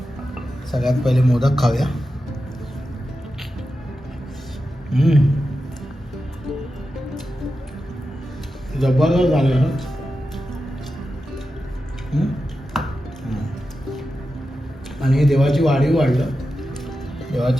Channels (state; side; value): normal; both; correlation 0.91